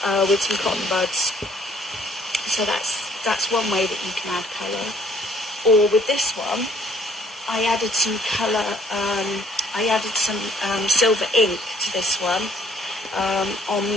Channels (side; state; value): both; normal; correlation 0.62